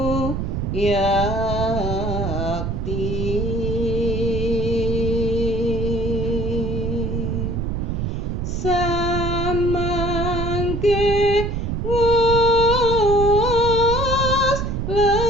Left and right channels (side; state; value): right; noise; rumble, 2 dB below the sound